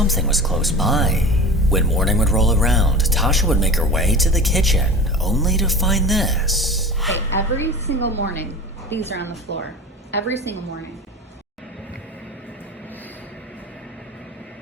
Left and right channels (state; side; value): normal; both; correlation 0.35